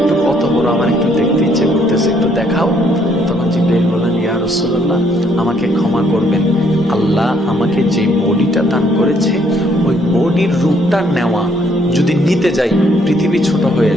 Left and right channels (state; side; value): normal; both; correlation 0.68